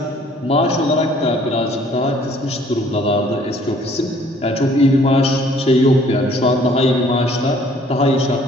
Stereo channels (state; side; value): normal; both; correlation 0.58